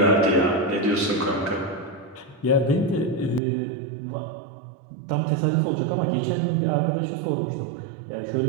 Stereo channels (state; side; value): drops out; left; at 3.4 s